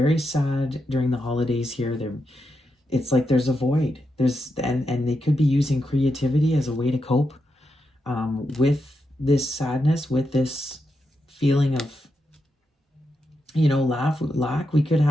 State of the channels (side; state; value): both; normal; correlation 0.85